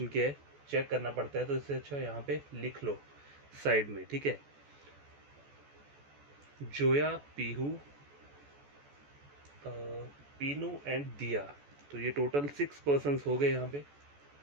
क्या है चेक करना पड़ता है, तो इससे अच्छा यहाँ पे लिख लो साइड में। ठीक है, जोया, पीहू, पीनू एंड दिया। तो ये टोटल 6 पर्सन्स हो गए यहाँ पे।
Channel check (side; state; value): left; late; 14 ms